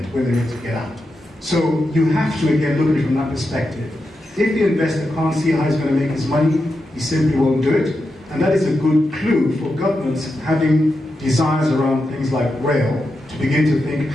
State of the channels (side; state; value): both; normal; correlation 0.88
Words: when they're ready to get out. So you have to, again, look at it from that perspective. If the investor can't see how he's going to make his money, he simply won't do it. And that is a good clue for governments having desires around things like rail to begin to think